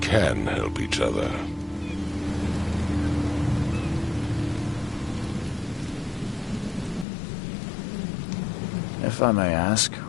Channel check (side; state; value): right; drops out; at 7.1 s